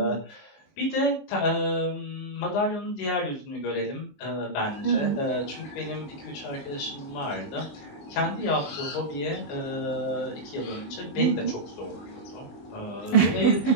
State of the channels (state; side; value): late; right; 19 ms